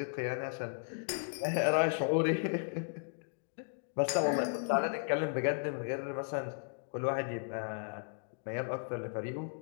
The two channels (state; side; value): silent; right; digital silence